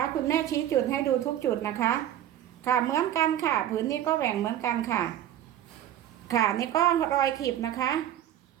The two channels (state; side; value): quieter; left; 11.5 dB